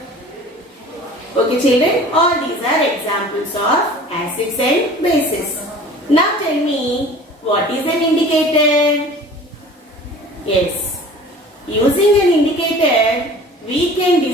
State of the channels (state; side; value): normal; both; correlation 0.44